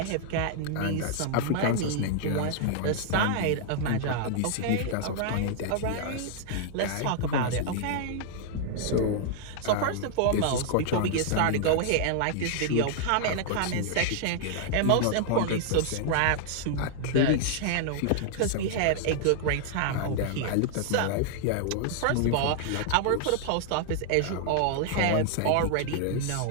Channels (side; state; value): both; different; correlation -0.01